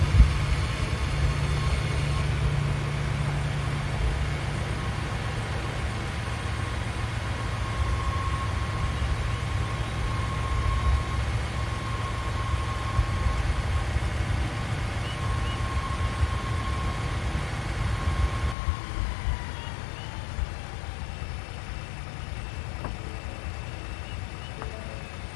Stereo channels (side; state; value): right; drops out; at 18.6 s